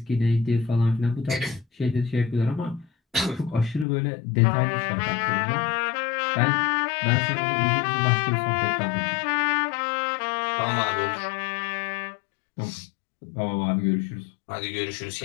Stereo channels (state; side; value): drops out; right; at 3.9 s